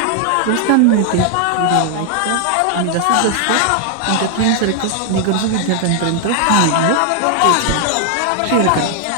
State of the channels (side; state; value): both; different; correlation 0.00